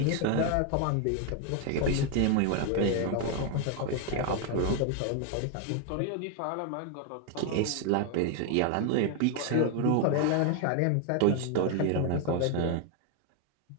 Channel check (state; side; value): different; both; correlation 0.01